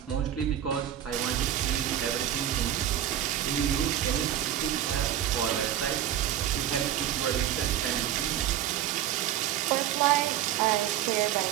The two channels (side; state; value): left; quieter; 11.2 dB